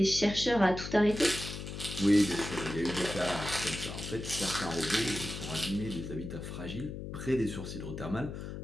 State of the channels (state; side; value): noise; left; hum, 8 dB below the sound